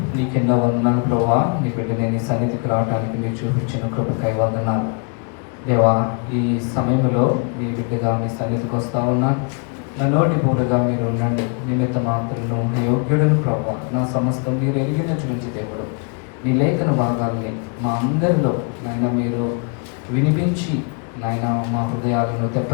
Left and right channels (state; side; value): quieter; right; 38.6 dB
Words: నీకెన్నో వందనాలు ప్రభువా, నీ బిడ్డని నీ సన్నిధికి రావడానికి మీరు చూపించిన కృపకై వందనాలు దేవా. ఈ సమయంలో మీ బిడ్డగా మీ సన్నిధికి వస్తూ ఉన్నా, నా నోటి పూటగా మీరు ఉండండి. నిమిత్త మాత్రను యోగ్యుడును ప్రభువా, నా సమస్తం మీరు ఎరిగిన చూపించి దేవుడు మీ లేఖన భాగాల్ని మా అందరిలో నాయన మీరు వినిపించి నాయన మా హృదయాలను